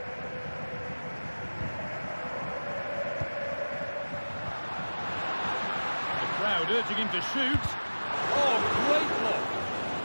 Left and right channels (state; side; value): inverted; both; correlation -1.00